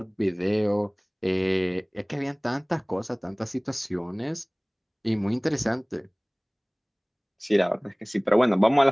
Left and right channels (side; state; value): both; identical; correlation 1.00